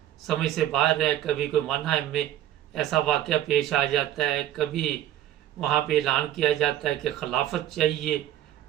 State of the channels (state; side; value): quieter; left; 12.5 dB